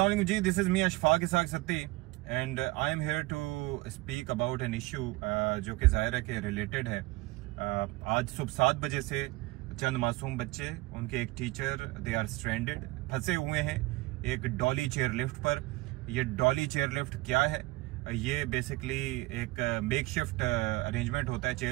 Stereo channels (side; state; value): left; quieter; 21.6 dB